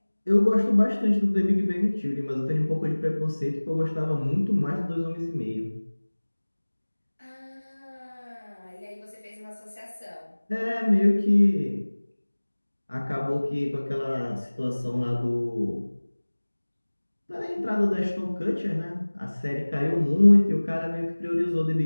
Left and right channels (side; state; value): both; inverted; correlation -1.00